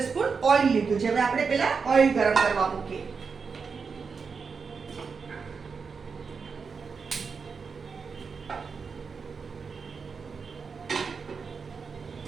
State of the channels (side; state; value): left; quieter; 5.4 dB